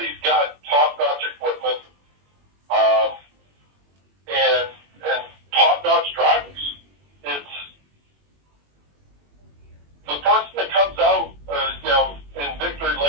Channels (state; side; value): late; left; 21 ms